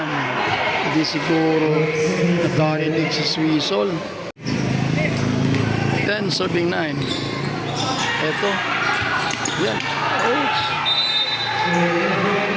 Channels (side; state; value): both; identical; correlation 1.00